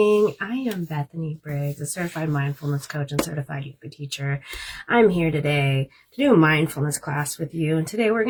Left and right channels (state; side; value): identical; both; correlation 1.00